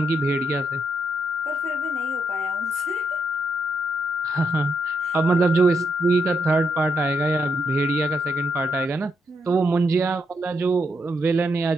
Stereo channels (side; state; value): both; normal; correlation 0.79